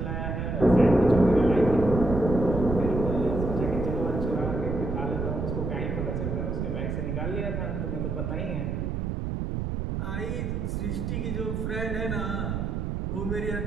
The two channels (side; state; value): right; noise; rumble, 2 dB below the sound